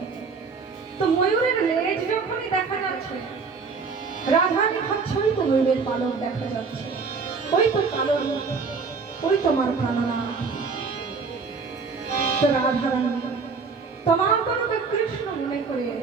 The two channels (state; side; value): quieter; left; 4.9 dB